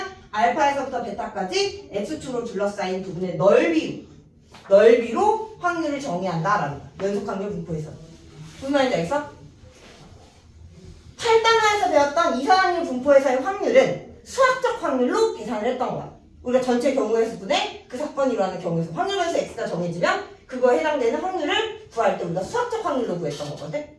알파에서부터 베타까지 x축으로 둘러싸인 부분의 넓이로 확률을 정의한다라는 거야. 연속 확률 분포에서. 무슨 말인지 알겠어? 8단원에서 배웠던 이산 확률 분포에서의 확률은 수학적 확률로 계산을 했던 거야. 우리가 전체 경우의 수분에 그 사건이 일어나는 경우에서 확률 변수 x가 정해지면 그거에 해당되는 확률을 구할 때 우리가 수학적 확률로 구했던 거거든?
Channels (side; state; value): both; identical; correlation 1.00